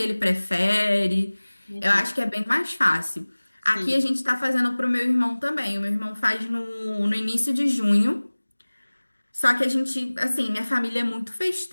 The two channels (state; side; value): inverted; both; correlation -1.00